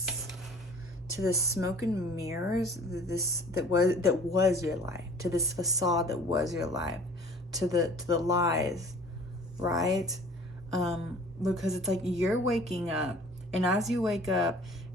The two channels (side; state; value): both; normal; correlation 0.49